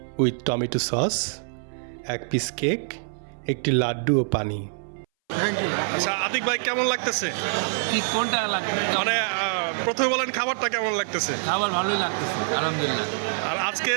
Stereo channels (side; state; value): left; silent; 60 dB below the other